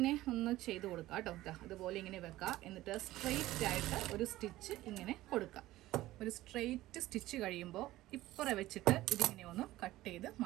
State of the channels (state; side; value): quieter; left; 16.3 dB